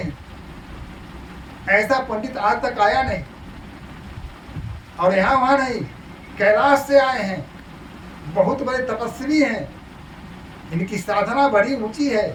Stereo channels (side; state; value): both; identical; correlation 1.00